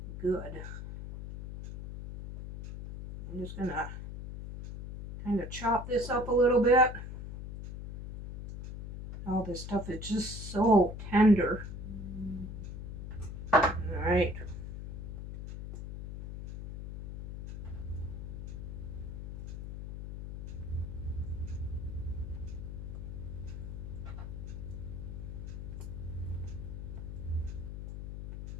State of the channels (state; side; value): noise; left; hum, 7 dB below the sound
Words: just gonna kind of chop this up a little bit. All this stuff is just so tender. All right.